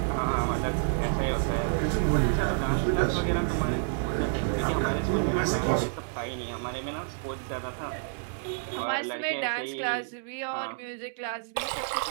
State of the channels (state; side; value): silent; left; digital silence